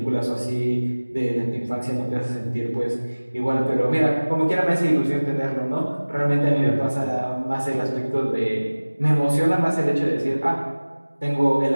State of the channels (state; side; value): inverted; both; correlation -1.00